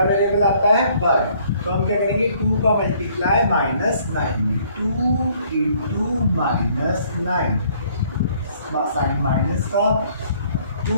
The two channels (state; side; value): inverted; both; correlation -0.62